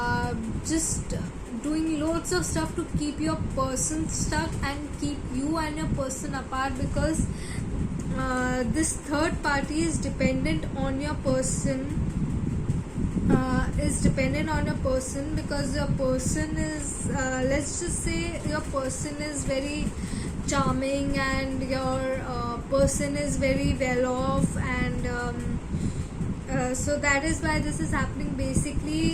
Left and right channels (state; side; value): identical; both; correlation 1.00